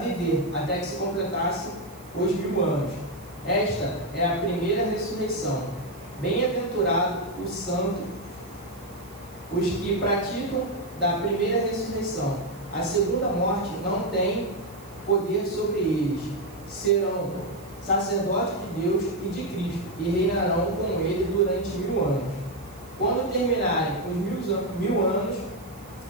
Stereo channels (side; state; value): right; noise; hiss, 24 dB below the sound